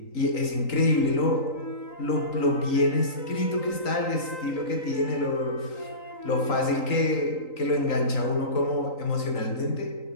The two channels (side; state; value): right; late; 3.9 ms